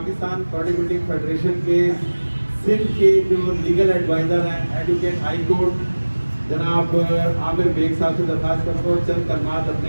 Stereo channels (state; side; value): inverted; both; correlation -1.00